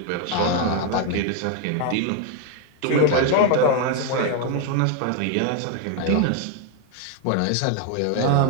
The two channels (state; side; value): different; both; correlation 0.01